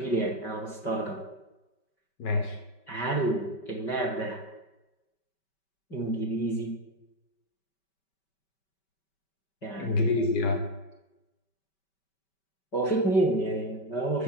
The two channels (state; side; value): late; right; 5.2 ms